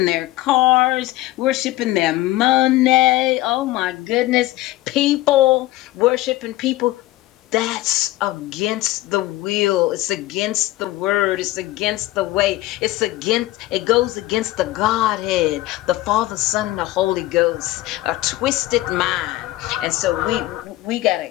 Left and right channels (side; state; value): right; quieter; 17.2 dB